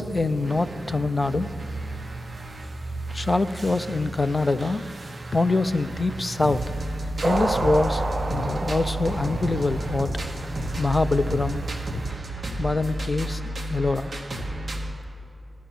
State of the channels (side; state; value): both; normal; correlation 0.92